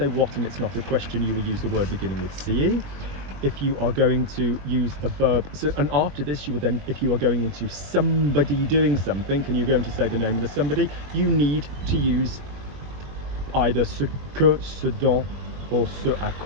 what and it's not a question, you will use the word beginning with CE. If you are going to use a verb, so, and after this you would then, if you are going into somebody doing something and you're going to say the name of the somebody, you need to use either ce que, ce dont, or ce à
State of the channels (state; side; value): late; left; 21 ms